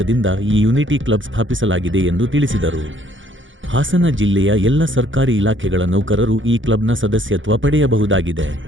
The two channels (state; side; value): late; left; 0.56 ms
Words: ಈ ಯೂನಿಟಿ ಕ್ಲಬ್ ಸ್ಥಾಪಿಸಲಾಗಿದೆ ಎಂದು ತಿಳಿಸಿದರು. ಹಾಸನ ಜಿಲ್ಲೆಯ ಎಲ್ಲ ಸರ್ಕಾರಿ ಇಲಾಖೆಗಳ ನೌಕರರು ಈ ಕ್ಲಬ್ನ ಸದಸ್ಯತ್ವ ಪಡೆಯಬಹುದಾಗಿದೆ.